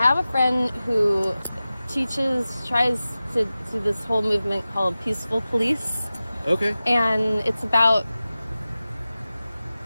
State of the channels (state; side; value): inverted; both; correlation -0.96